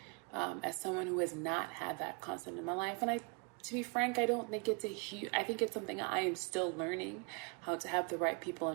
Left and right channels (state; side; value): quieter; left; 32.9 dB